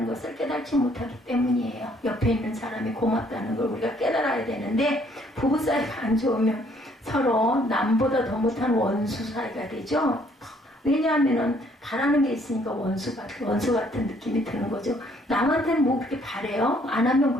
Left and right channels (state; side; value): normal; both; correlation 0.64